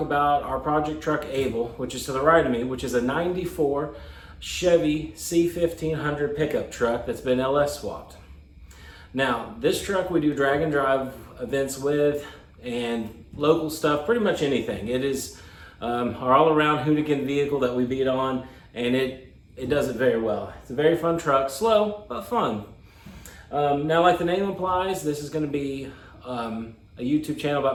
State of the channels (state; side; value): identical; both; correlation 1.00